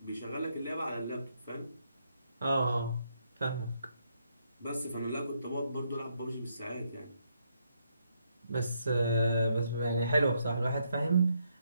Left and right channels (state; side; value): inverted; both; correlation -0.76